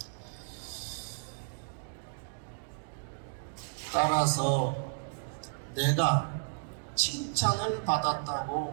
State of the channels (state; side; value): silent; left; digital silence